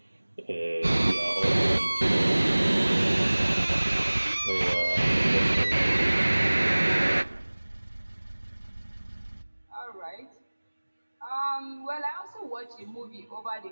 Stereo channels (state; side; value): inverted; both; correlation -1.00